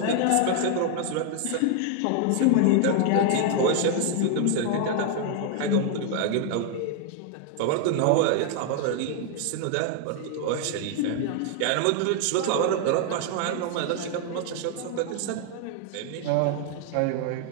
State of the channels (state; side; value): different; both; correlation 0.00